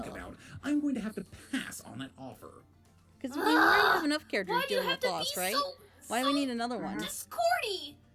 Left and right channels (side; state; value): both; identical; correlation 1.00